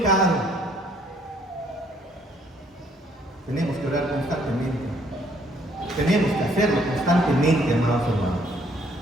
Tenemos que orar constantemente. Tenemos que hacerlo constantemente, amados hermanos.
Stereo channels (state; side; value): normal; both; correlation 0.65